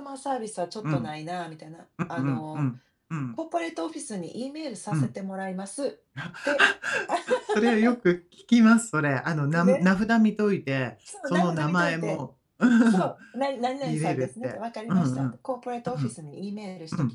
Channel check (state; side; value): identical; both; correlation 1.00